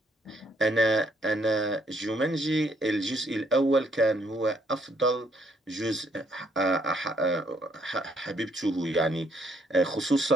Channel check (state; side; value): normal; both; correlation 0.69